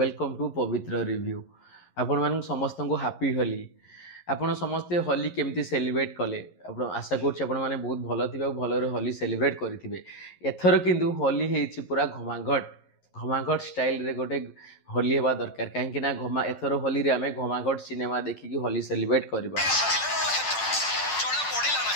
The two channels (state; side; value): late; right; 10 ms